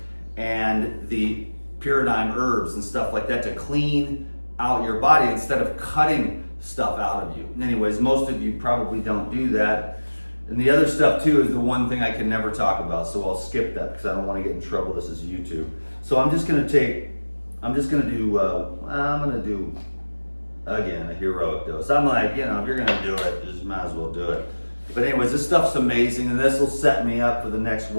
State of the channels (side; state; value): both; inverted; correlation -1.00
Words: and the pyridine herbs and stuff like that to clean out your body instead of cutting stuff out of you. Anyways, most of you probably don't do that. And the other stuff too is the one thing I can never talk about, so I'll skip that because I don't want to get in trouble. This is YouTube. So I'm just gonna do again a heroic dose. I'm like, you know, if you're gonna do it, just might as well do it. But anyways, this stuff's amazing, and this will set me up for the next